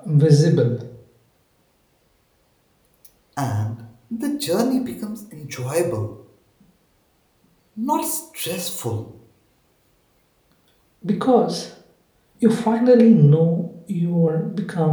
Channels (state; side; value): identical; both; correlation 1.00